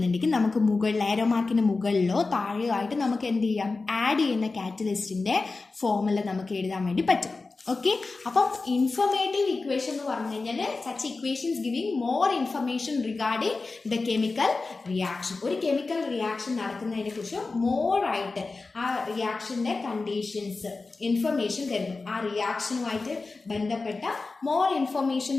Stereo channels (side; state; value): right; quieter; 3.8 dB